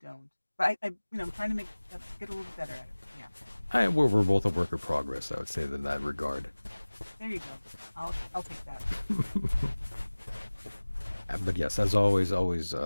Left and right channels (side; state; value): both; inverted; correlation -1.00